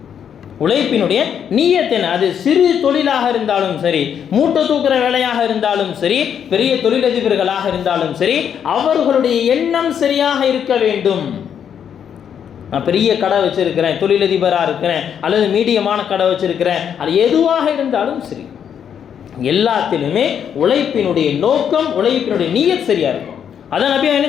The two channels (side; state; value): right; quieter; 8.4 dB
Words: உழைப்பினுடைய நியத்து என்ன, அது சிறு தொழிலாக இருந்தாலும் சரி, மூட்டை தூக்குற வேலையாக இருந்தாலும் சரி, பெரிய தொழிலதிபர்களாக இருந்தாலும் சரி, அவர்களுடைய எண்ணம் சரியாக இருக்க வேண்டும். நான் பெரிய கடை வச்சிருக்கிறேன், தொழிலதிபராக இருக்கிறேன், அல்லது மீடியமான கடை வச்சிருக்கிறேன், அது எதுவாக இருந்தாலும் சரி, எல்லாத்திலுமே உழைப்பினுடைய நோக்கம், உழைப்பினுடைய நியத் சரியா இருக்கும். அதான் நபி என்ன